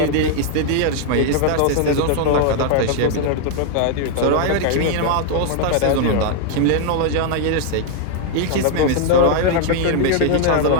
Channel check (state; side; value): different; both; correlation 0.00